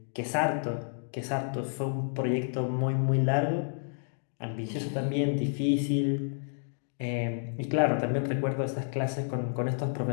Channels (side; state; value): right; silent; digital silence